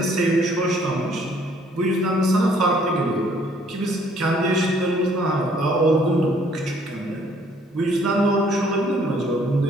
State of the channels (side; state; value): both; normal; correlation 0.62